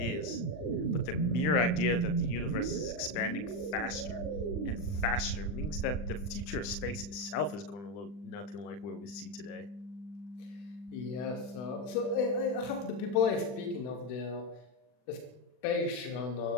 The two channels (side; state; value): right; late; 40 ms